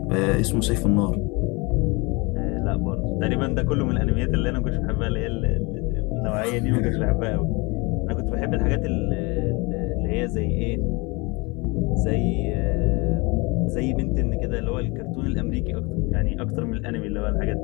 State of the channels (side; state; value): right; quieter; 26.9 dB